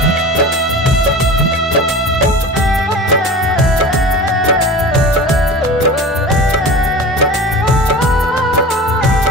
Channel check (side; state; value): both; normal; correlation 0.34